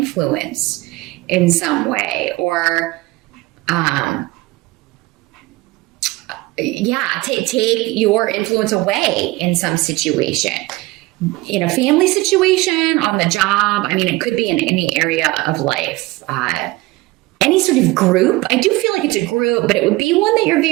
in some way, or take your influence away in some situation. In a family situation, on the job, I mean, it could be in any area of life. Any sort of group. I do feel like it's a group, but it would be one that you're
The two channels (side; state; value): left; quieter; 20.7 dB